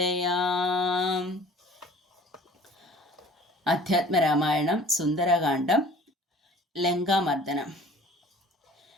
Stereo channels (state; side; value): normal; both; correlation 0.48